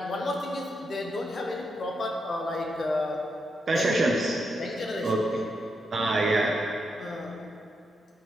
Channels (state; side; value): normal; both; correlation 0.83